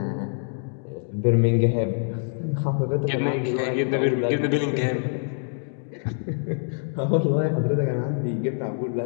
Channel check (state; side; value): silent; right; digital silence